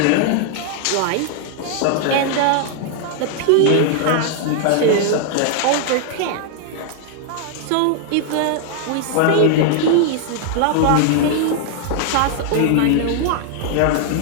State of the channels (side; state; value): both; different; correlation 0.00